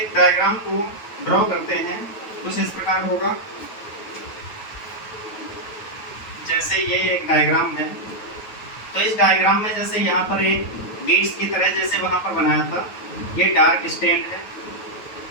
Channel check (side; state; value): right; late; 9.2 ms